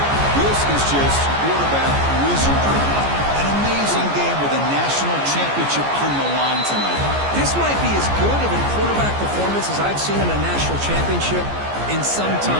This is just quarterback wizardry. An amazing game with a national championship on the line tonight. This might be as good of a quarterback performance as I've seen in a national championship in some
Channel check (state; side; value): late; left; 14 ms